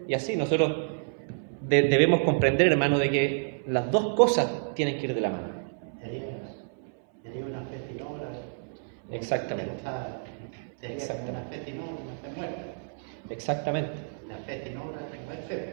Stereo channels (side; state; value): left; silent; 56 dB below the other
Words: Y así nosotros debemos comprender, hermano, de que las dos cosas tienen que ir de la mano. Exactamente. Exactamente.